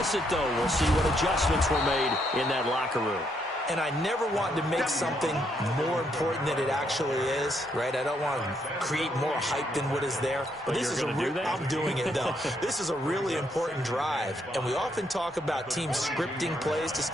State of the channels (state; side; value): normal; both; correlation 0.75